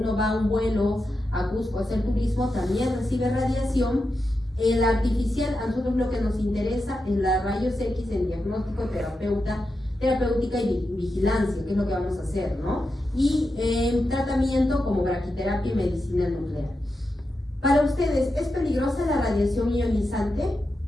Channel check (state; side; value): normal; both; correlation 0.88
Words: va a un vuelo a Cusco a hacer turismo, también recibe radiación. El artificial, a nosotros lo que nos interesa es la rayos X en diagnóstico terapéutica y vigilancia, que es lo que vamos a hacer, ¿no? Y tratamiento como braquiterapia y medicina nuclear. Para ustedes, ¿es peligrosa la radiación ionizante?